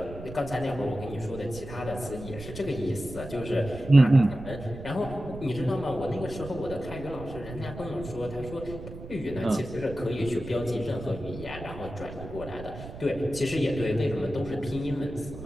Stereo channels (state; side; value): noise; right; rumble, 12 dB below the sound